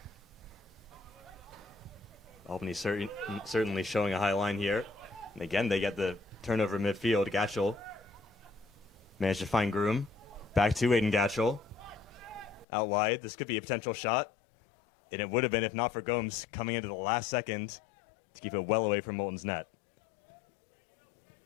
Albany certainly showing a high line here. And again, they get the turnover midfield. Gatchell managed to find Groom. Back to Aiden Gatchell. Out wide. This could be a potential shot. And it would have been if not for Gomes coming into the last second to keep it well away from Moulton's net.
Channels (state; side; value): drops out; right; at 12.7 s